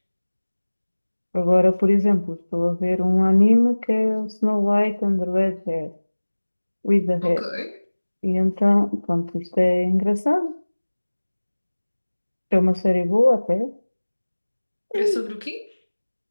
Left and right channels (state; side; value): inverted; both; correlation -1.00